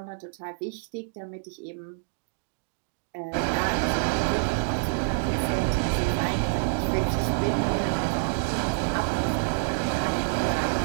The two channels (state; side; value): silent; left; digital silence